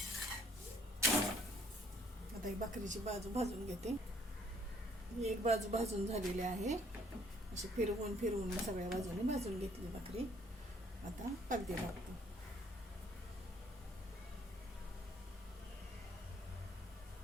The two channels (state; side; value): normal; both; correlation 0.64